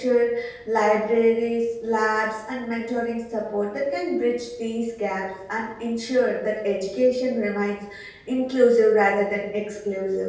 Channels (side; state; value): both; identical; correlation 1.00